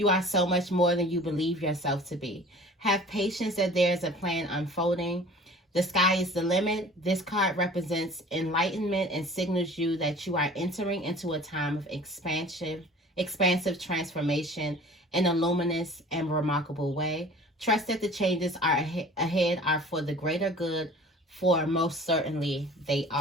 are so much more than you believe yourself to be. Have patience that there is a plan unfolding. The sky is the limit. This card represents enlightenment and signals you that you are entering into a time of expansive transformation in a luminous and remarkable way. Trust that the changes are ahead are for the greater good, for most certainly they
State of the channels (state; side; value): normal; both; correlation 0.45